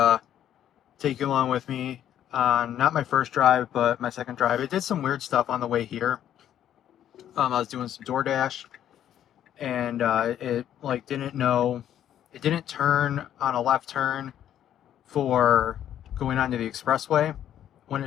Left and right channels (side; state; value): right; quieter; 10.7 dB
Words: take you along with me on not my first drive, but my second drive. It did some weird stuff on the way here. I was doing some DoorDash, and it like didn't know, it didn't turn on a left turn for going onto the expressway when